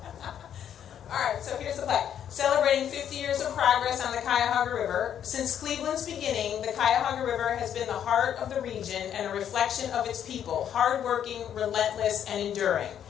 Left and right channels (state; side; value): quieter; right; 9.5 dB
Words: All right, so here's the plaque. Celebrating 50 years of progress on the Cuyahoga River. Since Cleveland's beginning, the Cuyahoga River has been the heart of the region and a reflection of its people, hardworking, relentless, and enduring.